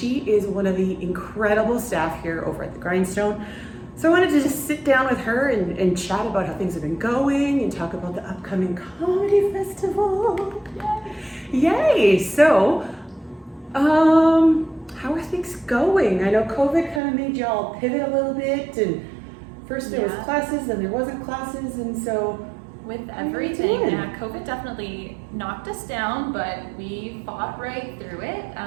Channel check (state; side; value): drops out; left; at 17.0 s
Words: is one of the incredible staff here over at the Grindstone. So I wanted to just sit down with her and chat about how things have been going and talk about the upcoming comedy festival. Yay! So, how are things going? I know COVID kind of made y'all pivot a little bit, and first there was classes, then there wasn't classes, and so with everything, COVID definitely knocked us down, but we fought right through it.